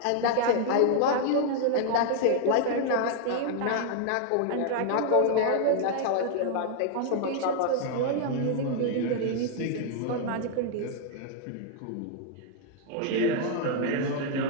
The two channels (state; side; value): different; both; correlation 0.00